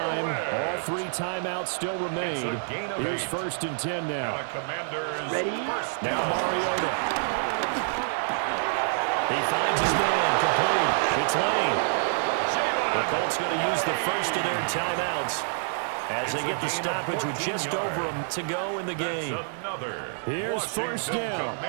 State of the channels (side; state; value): left; silent; 60 dB below the other